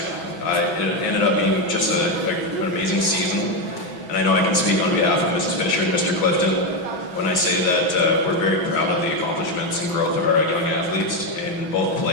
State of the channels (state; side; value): late; right; 6.2 ms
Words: It ended up being just an amazing season, and I know I can speak on behalf of Mrs. Fisher and Mr. Clifton when I say that we're very proud of the accomplishments and growth of our young athletes in both